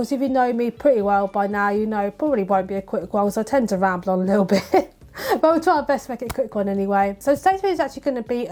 if you know me pretty well by now, you know it probably won't be a quick one because I tend to ramble on a little bit. But we'll try our best to make it a quick one anyway. So today's video is actually going to be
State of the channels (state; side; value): identical; both; correlation 1.00